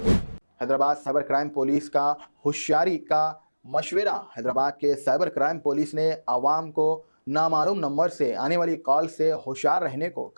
हैदराबाद साइबर क्राइम पुलिस का होशियारी का मशवरा। हैदराबाद के साइबर क्राइम पुलिस ने आवाम को नामालूम नंबर से आने वाली कॉल से होशियार रहने को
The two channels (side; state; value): both; inverted; correlation -1.00